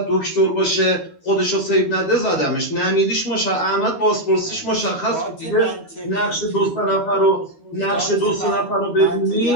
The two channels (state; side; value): late; right; 12 ms